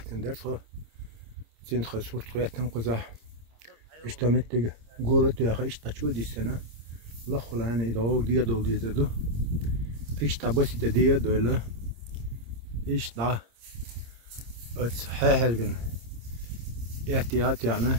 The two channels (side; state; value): left; late; 26 ms